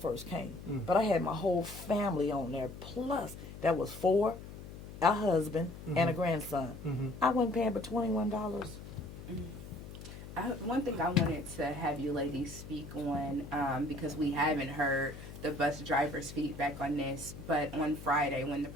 came, but I had my whole family on there. Plus, that was 4, a husband, and a grandson. Mm-hmm. I wasn't paying but $21. One thing I wanted to have you ladies speak on, because we haven't heard the bus drivers' feedback on this, but on Friday when the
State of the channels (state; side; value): noise; left; hum, 13 dB below the sound